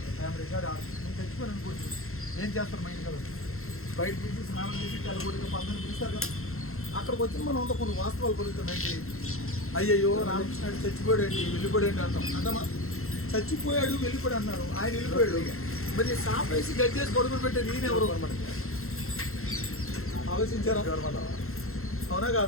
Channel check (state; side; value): late; right; 0.62 ms